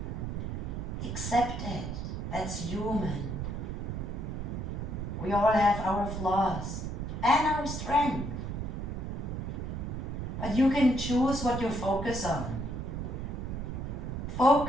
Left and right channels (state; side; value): noise; right; rumble, 4 dB below the sound